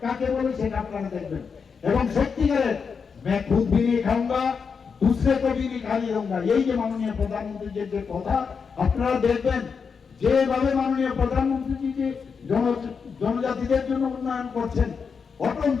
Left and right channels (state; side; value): quieter; right; 5.8 dB